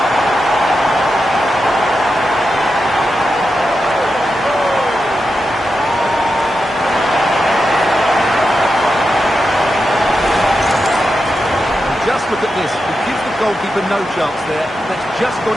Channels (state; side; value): normal; both; correlation 0.88